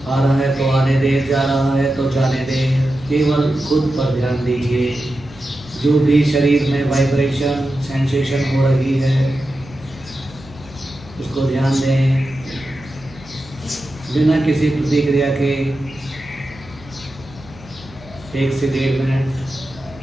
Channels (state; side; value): noise; right; hum, 22 dB below the sound